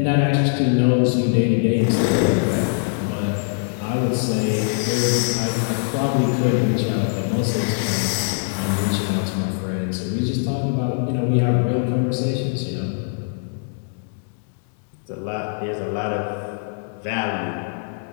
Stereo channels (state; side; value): silent; right; digital silence